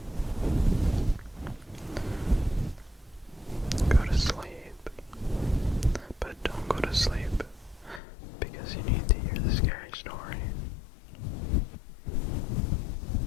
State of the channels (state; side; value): drops out; right; at 8.0 s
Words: Go to sleep, but don't go to sleep because you need to hear the scary story.